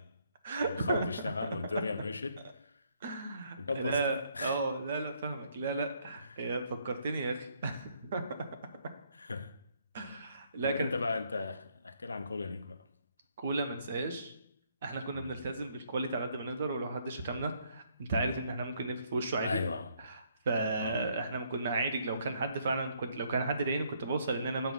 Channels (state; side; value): inverted; both; correlation -0.69